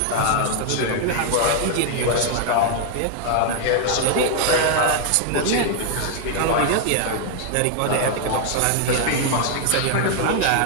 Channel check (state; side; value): different; both; correlation 0.00